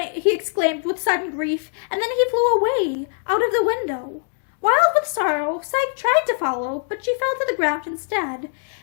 exclaimed with sudden grief, and then he flew away, out of the window. Wild with sorrow, Psyche tried to follow, but she fell to the ground instead.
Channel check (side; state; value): right; silent; digital silence